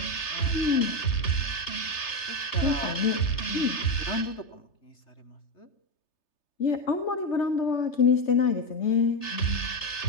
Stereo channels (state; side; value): late; right; 3.3 ms